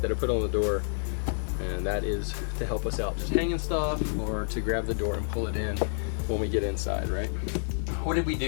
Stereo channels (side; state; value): right; silent; digital silence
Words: I put on the door, and that is to help us out, just hanging stuff or to grab the door and pull it in when we get inside, right? What did we